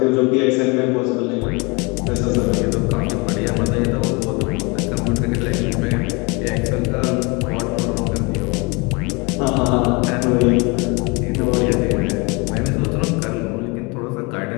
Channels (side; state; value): right; quieter; 28.6 dB